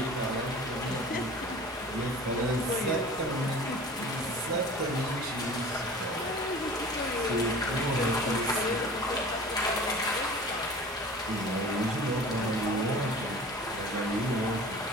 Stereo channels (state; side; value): normal; both; correlation 0.41